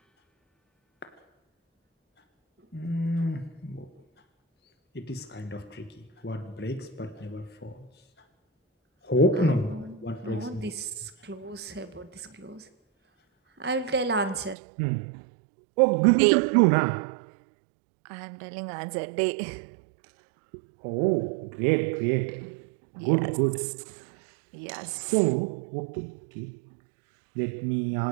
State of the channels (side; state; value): left; drops out; at 14.6 s